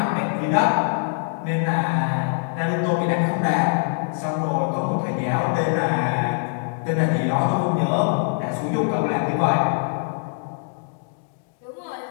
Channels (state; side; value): silent; right; digital silence